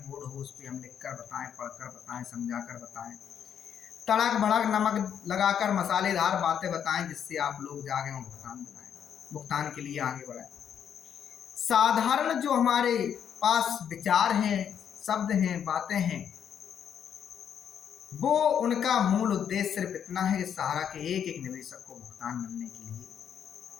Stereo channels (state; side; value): quieter; right; 8.6 dB